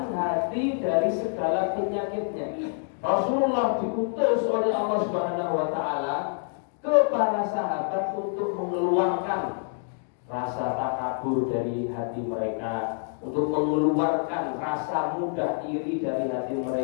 hati dari segala penyakitnya. Rasulullah diutus oleh Allah Subhanahu wa taala ke para sahabat untuk mengeluarkan rasa takabur dari hati mereka, untuk mengeluarkan rasa mudah iri dari hati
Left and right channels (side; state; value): right; silent; 59 dB below the other